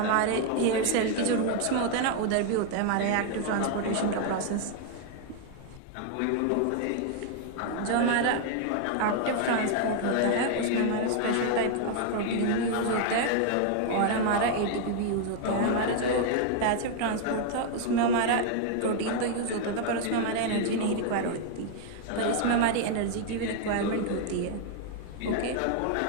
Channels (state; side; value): different; both; correlation 0.00